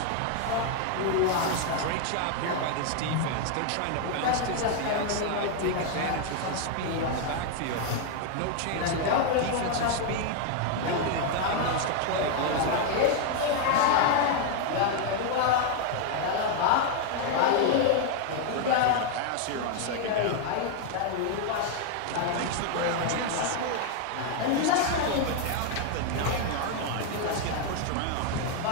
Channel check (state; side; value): different; both; correlation 0.00